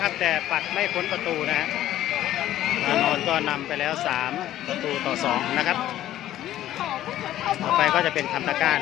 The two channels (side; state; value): right; quieter; 13.1 dB